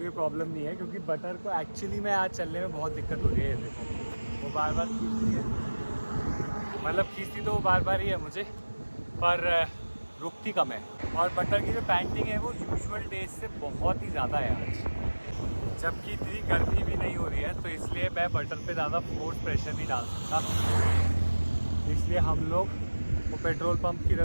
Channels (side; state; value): both; inverted; correlation -1.00